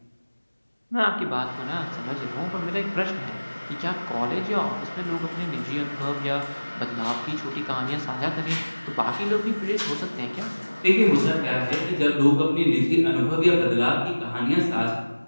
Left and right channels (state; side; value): inverted; both; correlation -1.00